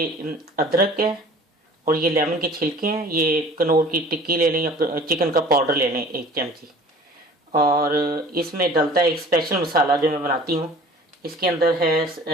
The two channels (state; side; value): normal; both; correlation 0.47